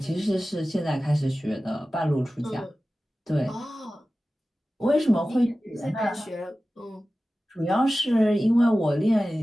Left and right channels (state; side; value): normal; both; correlation 0.95